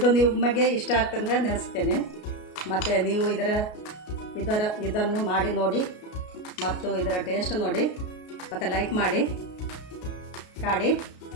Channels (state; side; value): late; right; 33 ms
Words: ನಿಮಗೆ ಇಷ್ಟ ಆಗ್ತಂದ್ರೆ ನೆನೆಸ್ತೇನೆ. ಮತ್ತು ನೀವು ಇದನ್ನು ಮಾಡಿ ನೋಡಿ ಮತ್ತು ಇದರ ಟೇಸ್ಟ್ ನೋಡಿ, ಮತ್ತು ಲೈಕ್ ಮಾಡಿ.